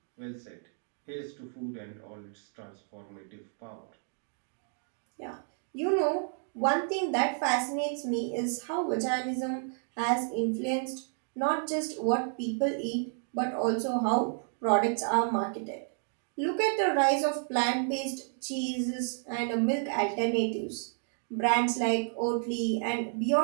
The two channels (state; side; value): silent; left; 57 dB below the other